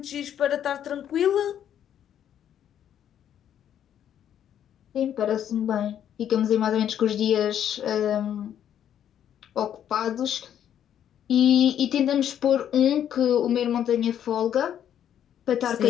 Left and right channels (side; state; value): right; quieter; 9.9 dB